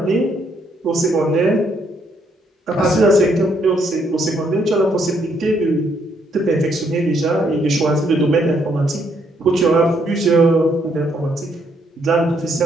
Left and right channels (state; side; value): normal; both; correlation 0.72